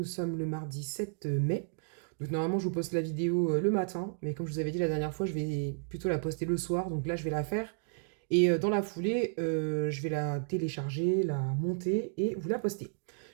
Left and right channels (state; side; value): silent; left; 56 dB below the other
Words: sommes le mardi 7 mai. Donc normalement je vous poste la vidéo le matin. Mais comme je vous avais dit la dernière fois, je vais plutôt la poster le soir. Donc là je vais la faire. Et dans la foulée, je vais la télécharger, la monter et vous la poster.